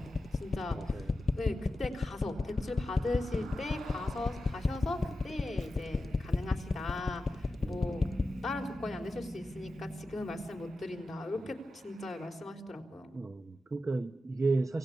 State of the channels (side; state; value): both; normal; correlation 0.91